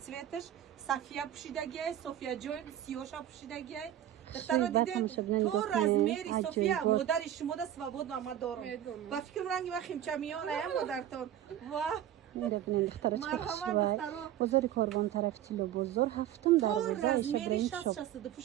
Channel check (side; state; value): left; quieter; 11.7 dB